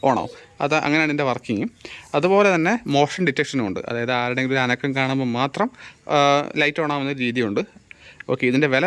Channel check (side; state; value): both; identical; correlation 1.00